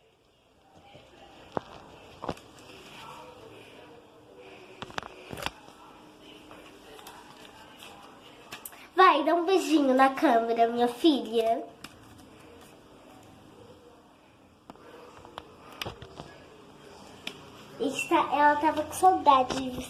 Vai, dá um beijinho na câmera, minha filha. Ela tava com saudade de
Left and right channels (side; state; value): both; identical; correlation 1.00